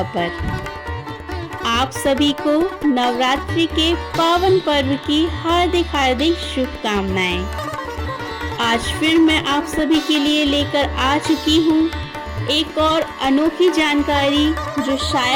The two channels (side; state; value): both; identical; correlation 1.00